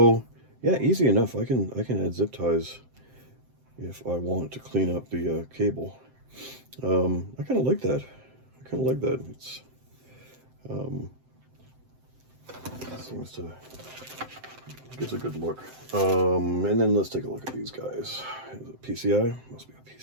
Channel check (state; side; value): late; left; 7.7 ms